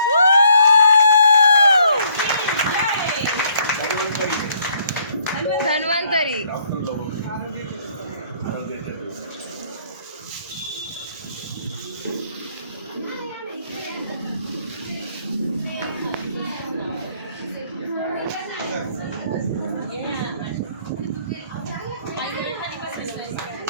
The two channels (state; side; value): inverted; both; correlation -0.65